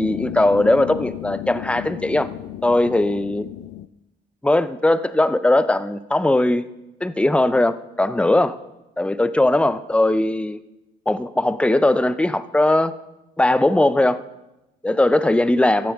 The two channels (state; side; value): normal; both; correlation 0.94